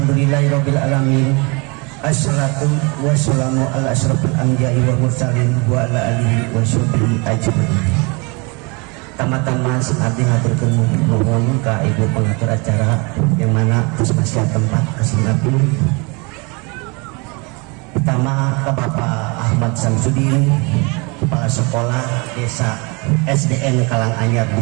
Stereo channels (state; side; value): quieter; left; 29.4 dB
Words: alamin. Assalatu wassalamu ala asyrafil anbiya'i wal mursalin wa ala alihi wa sahbihi ajmain. Tama-tama abdi ngaturkeun nuhun ka ibu pengatur acara yang mana terus masih tempat kasih abdi. Pertama ke Bapak Ahmad Samsudin, Kepala Sekolah Desa SDN Karanganyar